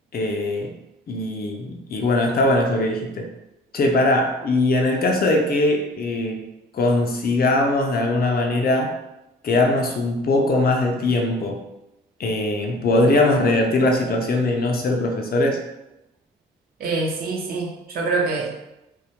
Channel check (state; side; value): normal; both; correlation 0.47